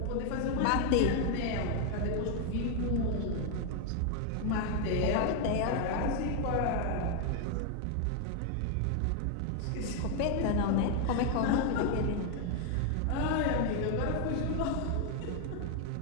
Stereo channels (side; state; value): both; different; correlation 0.00